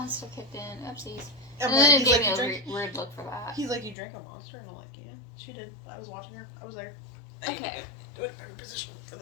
kicked in. Oopsies. And then it he's gave like, me a weird look for that. He's like, you drank a monster? And I'm like, yeah, she did. I was watching her. I was there. I need to Okay. get to a better position for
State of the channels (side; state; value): right; drops out; at 4.0 s